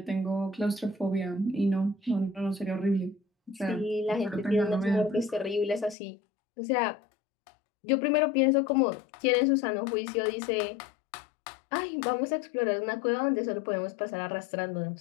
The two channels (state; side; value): drops out; right; at 6.0 s